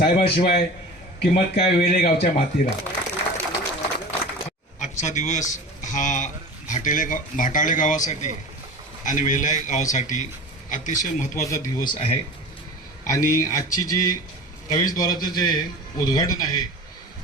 किंमत काय वेले गावच्या मातीरा। आजचा दिवस हा भाटाळे गावासाठी आणि वेले गावासाठी अतिशय महत्त्वाचा दिवस आहे आणि आजची जी प्रवेशद्वाराचं जे उद्घाटन आहे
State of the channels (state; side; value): normal; both; correlation 0.35